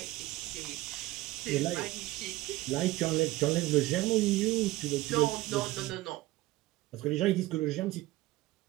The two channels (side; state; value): left; quieter; 18.0 dB